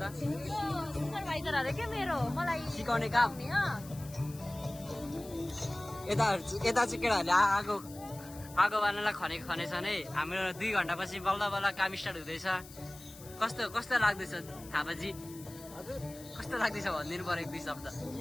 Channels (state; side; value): noise; left; hiss, 18 dB below the sound